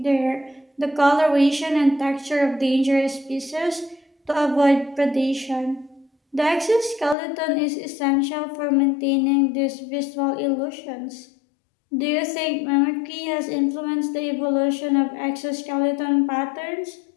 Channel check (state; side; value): drops out; right; at 7.2 s